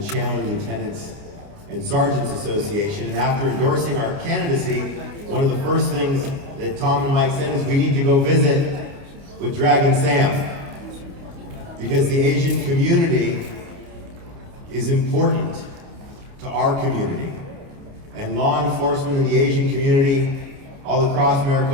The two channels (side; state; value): left; late; 29 ms